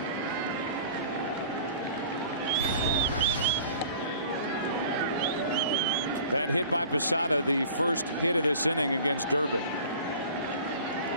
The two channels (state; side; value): inverted; both; correlation -0.45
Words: That hit by Posada, the first hit of this inning against Durbin.